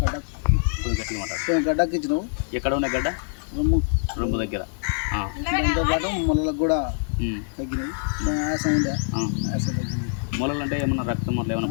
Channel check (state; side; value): silent; right; 62 dB below the other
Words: కొంచెం గట్టిగా మాట. గడ్డకి ఇచ్చినావు. ఎక్కడ ఉన్న గడ్డ? రొమ్ము దగ్గర. దాంతోపాటు మొలలకు కూడా తగ్గినాయి. ఆయాసం ఉండే, ఆయాసం తగ్గింది. మొలలు అంటే ఏమన్నా రక్తం అట్లా